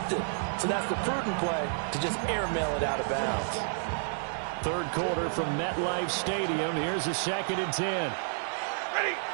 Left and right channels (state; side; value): silent; left; digital silence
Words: So that's the prudent play to just airmail it out of bounds. 3rd quarter from MetLife Stadium. Here's a 2nd and 10. Ready.